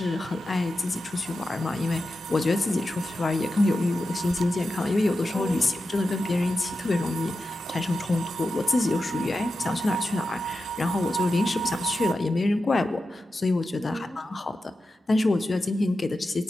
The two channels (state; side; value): normal; both; correlation 0.91